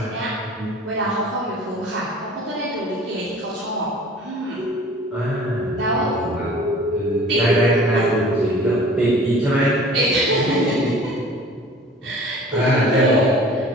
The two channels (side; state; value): both; normal; correlation 0.46